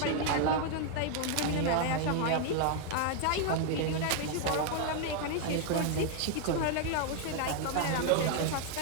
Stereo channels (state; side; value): different; both; correlation 0.00